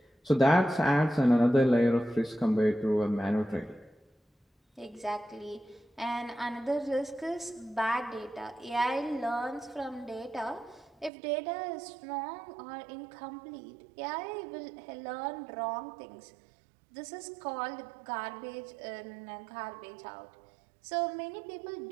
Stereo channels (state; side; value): drops out; left; at 11.1 s